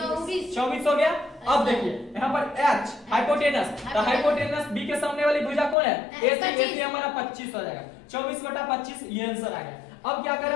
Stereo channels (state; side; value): drops out; right; at 5.8 s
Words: हो गया। अब देखिए यहाँ पर H हाइपोटेनस, तो हाइपोटेनस B के सामने वाली भुजा कौन है AC हमारा 25 हो जाएगा, 24 बटा 25 ये आंसर आ गया। अब क्या कर